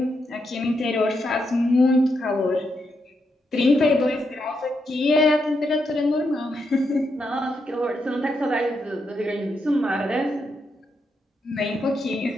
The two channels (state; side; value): normal; both; correlation 0.81